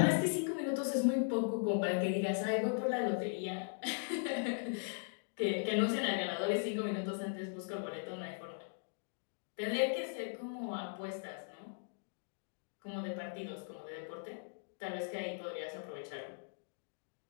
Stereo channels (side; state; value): right; silent; digital silence